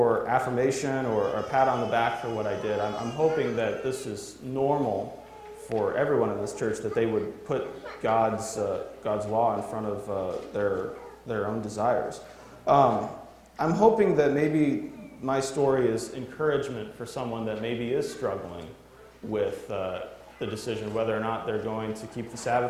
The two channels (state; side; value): identical; both; correlation 1.00